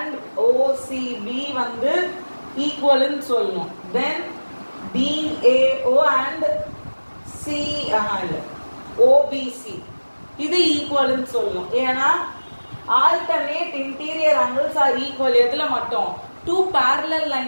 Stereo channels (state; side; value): inverted; both; correlation -1.00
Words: OCB வந்து ஈக்குவல்னு சொல்லணும். தென் DAO and OBC இது ஈக்குவல்னு சொல்லணும். ஏன்னா alternate interior angles R equal. எதுல மட்டும்? டூ பேரலல்